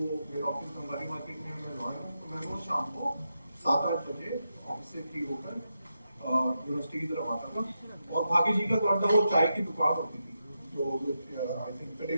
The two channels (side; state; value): both; inverted; correlation -0.87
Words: मेरा ऑफिस बंगाली मार्केट में मैं लॉयर हूँ, तो मैं रोज शाम को 7-8 बजे ऑफिस से फ्री होकर यूनिवर्सिटी की तरफ आता था। और भागी जी का तो अंदर वो चाय की दुकान होती थी, जो आई थिंक